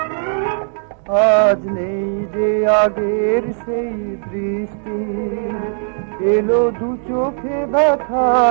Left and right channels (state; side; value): silent; left; digital silence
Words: আজ নেই যে আগের সেই দৃষ্টি, এলো দু চোখে